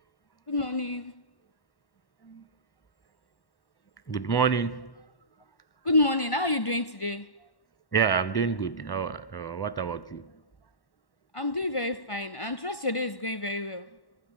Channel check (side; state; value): right; late; 1.1 ms